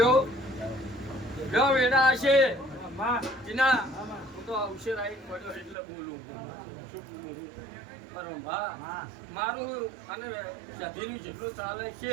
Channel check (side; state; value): left; drops out; at 5.8 s